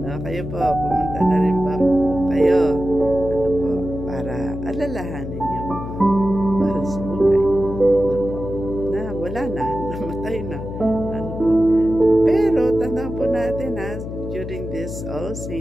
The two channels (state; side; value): noise; left; hum, 8 dB below the sound